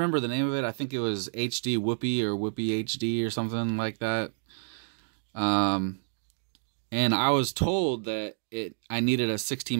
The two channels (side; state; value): left; silent; digital silence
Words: the name of it. I think it was HD Whoopee or Whoopee HD or something like that. And I was told that I needed a